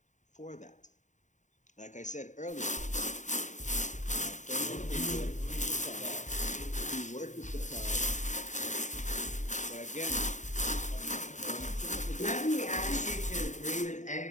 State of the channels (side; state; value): right; late; 0.35 ms